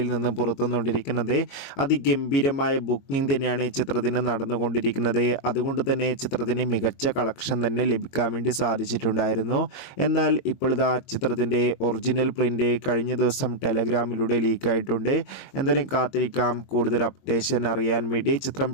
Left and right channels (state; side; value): late; right; 22 ms